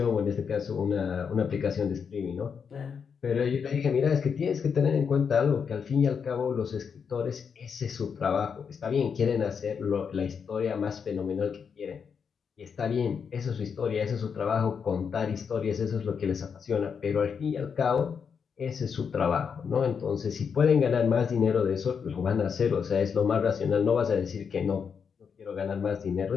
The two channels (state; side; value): quieter; right; 6.5 dB